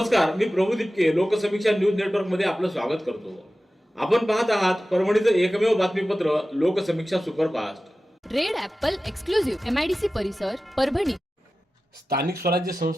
मी प्रभू दिपके लोकसमीक्षा न्यूज नेटवर्क मध्ये आपलं स्वागत करतो। आपण पाहत आहात परभणीचं एकमेव बातमीपत्र Loksamiksha superfast. Red Apple exclusive MIDC परिसर परभणी। स्थानिक स्वराज्य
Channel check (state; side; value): normal; both; correlation 0.95